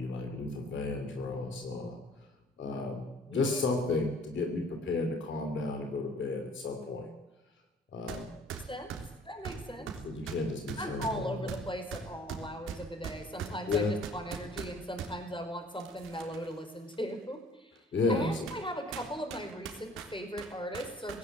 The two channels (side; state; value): both; normal; correlation 0.54